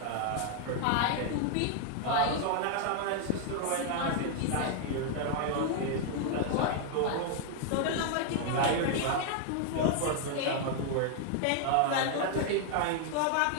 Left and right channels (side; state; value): both; different; correlation 0.00